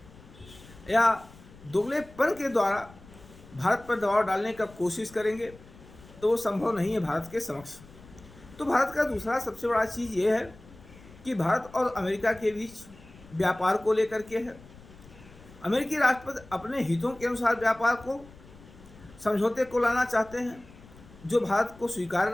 या दोगलेपन के द्वारा भारत पर दबाव डालने का कोशिश करेंगे तो वो संभव नहीं है भारत के समक्ष। तो भारत का दूसरा सबसे बड़ा चीज़ ये है कि भारत और अमेरिका के बीच व्यापार को लेकर के है। अमेरिकी राष्ट्रपति अपने हितों के अनुसार व्यापार को, समझौते को लाना चाहते हैं, जो भारत को स्वीकार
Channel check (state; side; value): noise; left; rumble, 21 dB below the sound